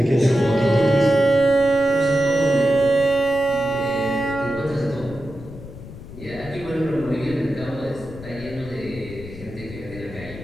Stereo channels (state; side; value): noise; left; rumble, 14 dB below the sound